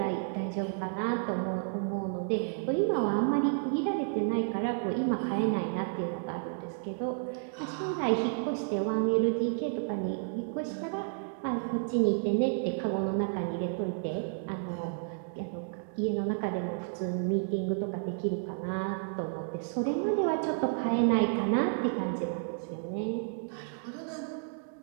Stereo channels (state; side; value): silent; left; digital silence